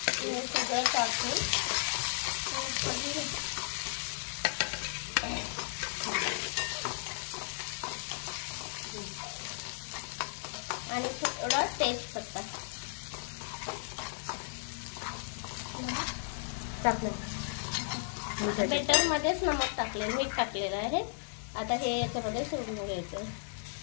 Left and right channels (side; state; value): right; silent; 55 dB below the other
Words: सगळं टाकून आणि थोडा तेजपत्ता टाकलं। बेटर मध्येच नमक टाकले, मीठ टाकलेलं आहे। आता हे याच्यामध्ये सोडून घ्यायचं